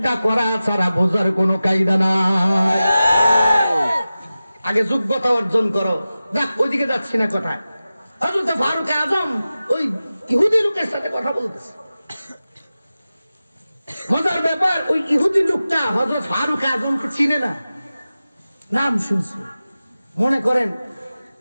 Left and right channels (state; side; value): inverted; both; correlation -0.95